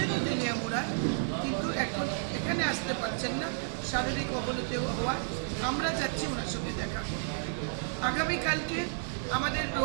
তেলিয়ামুড়ায়, কিন্তু এখন এখানে আসতে পারছেন না শারীরিক অবনতি হওয়ায়। আমরা যাচ্ছি ওনার সঙ্গে দেখা করতে। আগামীকালকে আমাদের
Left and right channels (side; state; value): left; silent; digital silence